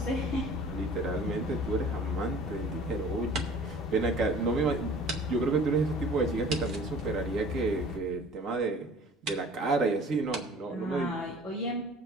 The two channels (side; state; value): both; normal; correlation 0.48